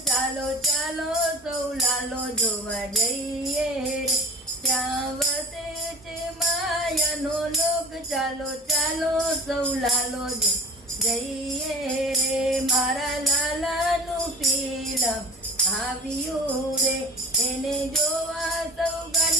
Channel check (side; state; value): both; normal; correlation 0.38